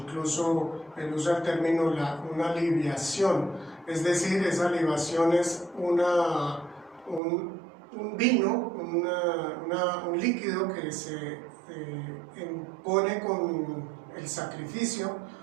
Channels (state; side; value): drops out; left; at 7.2 s